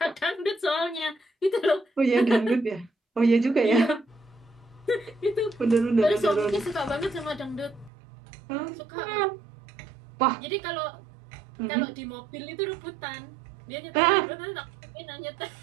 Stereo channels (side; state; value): left; drops out; at 7.9 s